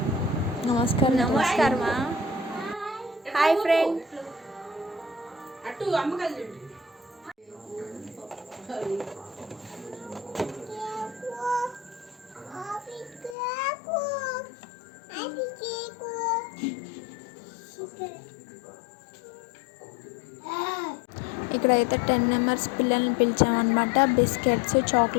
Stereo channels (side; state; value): right; drops out; at 13.4 s